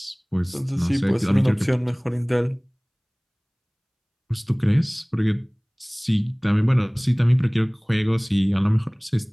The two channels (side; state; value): both; identical; correlation 1.00